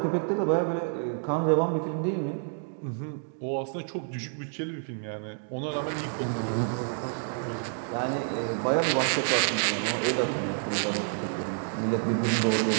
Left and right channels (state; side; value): silent; left; 59 dB below the other